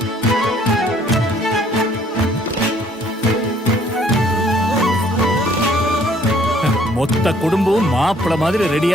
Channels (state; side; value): normal; both; correlation 0.61